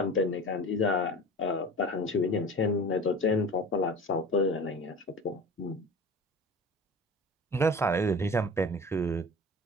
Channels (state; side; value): normal; both; correlation 0.38